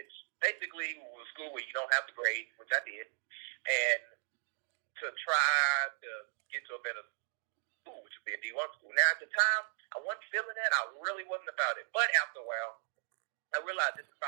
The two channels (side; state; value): left; silent; digital silence